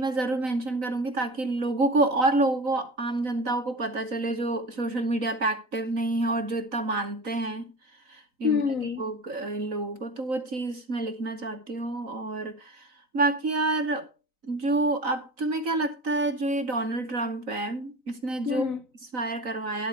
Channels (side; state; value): left; late; 3.9 ms